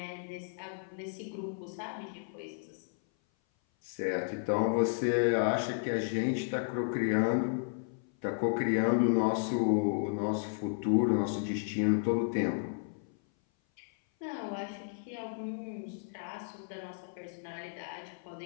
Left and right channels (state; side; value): silent; right; 56 dB below the other